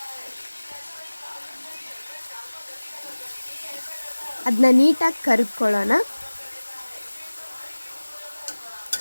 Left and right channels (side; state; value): both; inverted; correlation -1.00